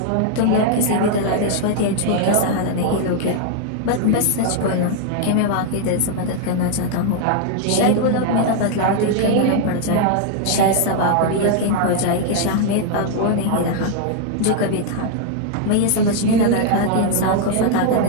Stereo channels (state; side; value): different; both; correlation 0.00